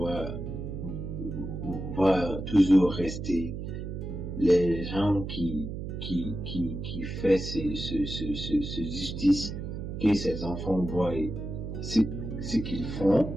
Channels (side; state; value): right; noise; hum, 6 dB below the sound